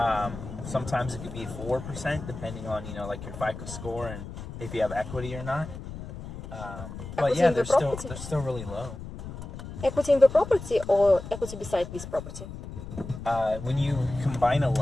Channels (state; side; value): noise; left; rumble, 11 dB below the sound